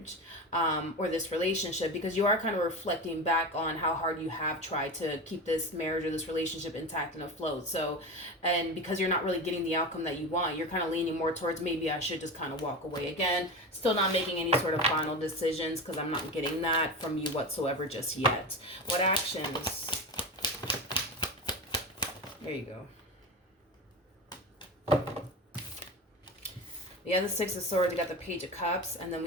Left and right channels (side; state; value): both; normal; correlation 0.25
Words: or this relationship, because you are kind of reflecting back on how hard you have tried to keep this marriage or this relationship intact and afloat. So, and because you're not really getting the outcome that you want, you're kind of leaning more towards, maybe I should just kind of walk away. Again, still not making any sort of final decisions, because I'm not getting that from you whatsoever just yet. What actions? There you go. We have the Six of Swords, we got the Page of Cups, and then